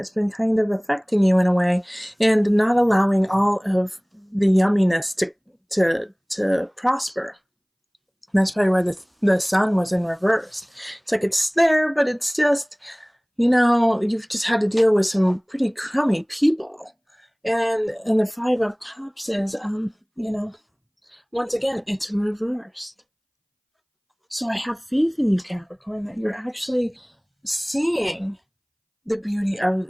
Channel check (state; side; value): identical; both; correlation 1.00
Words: been kind of affecting you in a way, and not allowing all of the yumminess to prosper. And that's probably why the sun was in reverse. It's like it's there, but it's just, you've just had to deal with some pretty crummy people. And the Five of Cups is, once again, it's reversed. So I have faith in you, Capricorn, that you're actually seeing the beauty of